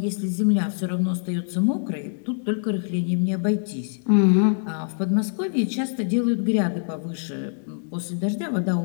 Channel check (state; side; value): silent; right; digital silence